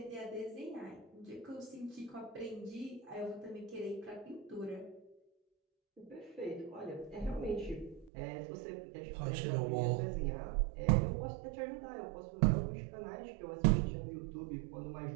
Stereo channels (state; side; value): drops out; left; at 8.1 s